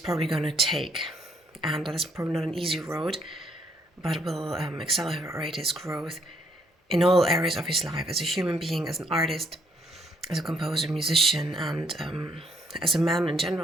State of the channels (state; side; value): normal; both; correlation 0.68